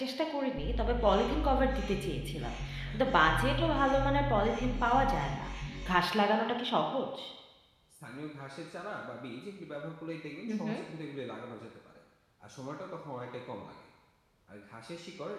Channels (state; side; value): identical; both; correlation 1.00